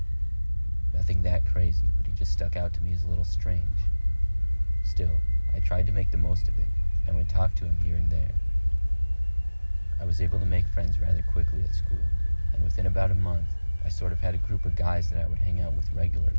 Nothing that crazy, but he just stuck out to me as a little strange. Still, I tried to make the most of it and would talk to him here and there. I was able to make friends rather quickly at school, and within about a month, I sort of had a group of guys that I would hang out with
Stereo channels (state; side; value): inverted; both; correlation -1.00